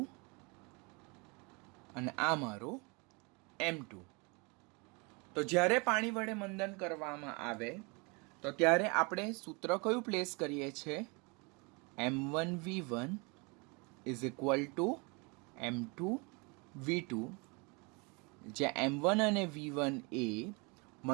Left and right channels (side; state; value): left; quieter; 29.9 dB